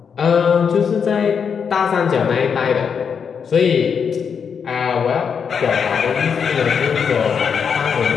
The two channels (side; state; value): right; quieter; 6.7 dB